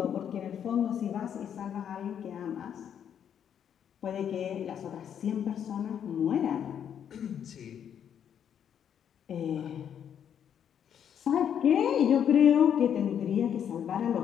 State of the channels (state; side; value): quieter; right; 8.8 dB